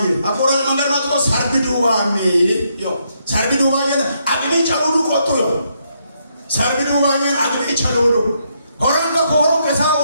አቆራል መንገድ ማጥቆ ሰርቢዱዋሚ ዮ ሰርቢዱዋዬ አግኒ ጫውሉ ቆጡ ዮ ሰርቢዱዋዬ አግኒ ጫውሉ ሆራንጋ ኮሮ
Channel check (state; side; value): inverted; both; correlation -0.76